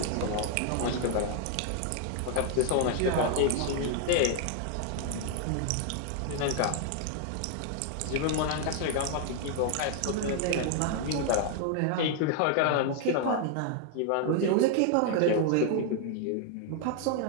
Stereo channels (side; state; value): both; different; correlation 0.00